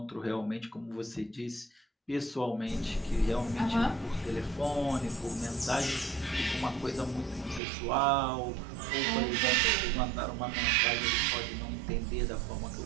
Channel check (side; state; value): left; drops out; at 7.6 s